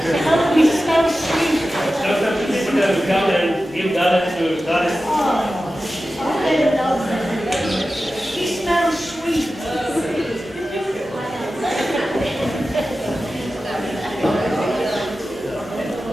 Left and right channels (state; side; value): normal; both; correlation 0.94